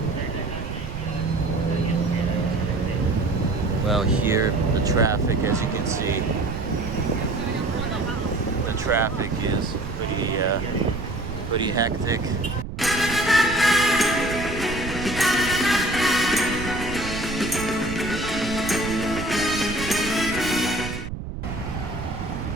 Well, here the traffic, as you can see, the traffic is pretty hectic.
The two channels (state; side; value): noise; right; rumble, 8 dB below the sound